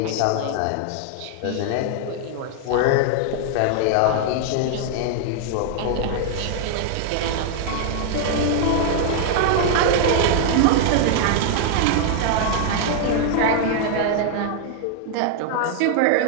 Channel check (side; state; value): both; different; correlation 0.00